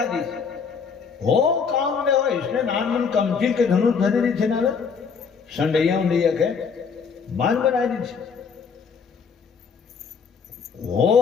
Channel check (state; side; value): quieter; right; 5.9 dB